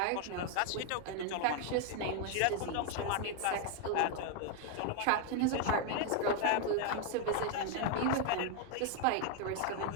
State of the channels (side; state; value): both; different; correlation 0.00